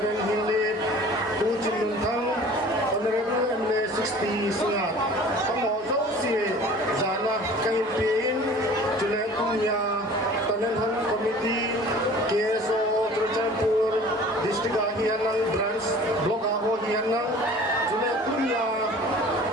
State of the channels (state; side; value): normal; both; correlation 0.46